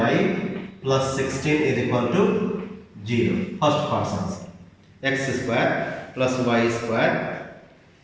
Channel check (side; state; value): both; identical; correlation 1.00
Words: plus 16 is equal to 0. First part's answer. X square plus y square